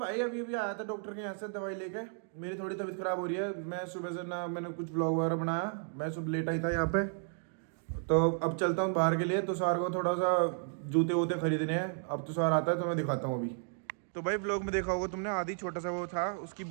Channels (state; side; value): silent; left; 55 dB below the other